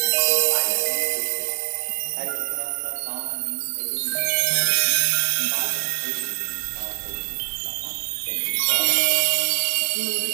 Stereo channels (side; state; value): left; silent; digital silence